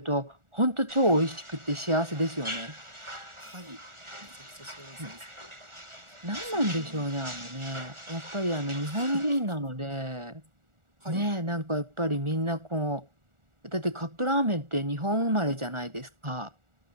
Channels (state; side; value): late; left; 1.4 ms